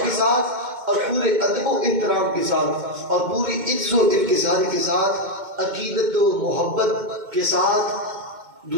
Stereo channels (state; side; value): late; left; 2.1 ms